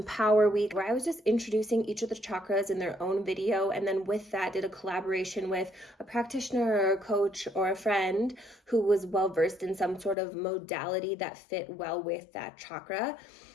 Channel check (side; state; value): right; drops out; at 10.2 s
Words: Week, where I was just introducing each of the chakras in their own video. And then with that, did a collaboration with a practitioner or a coach or a friend who was well versed in some sort of modality that fit well with that chakra.